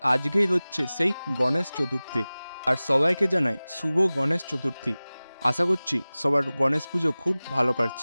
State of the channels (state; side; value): inverted; both; correlation -0.98